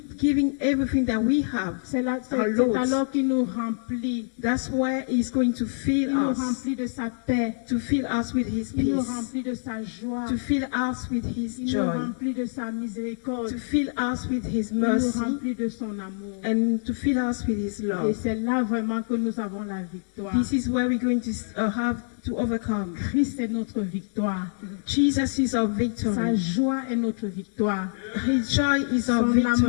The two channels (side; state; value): right; silent; digital silence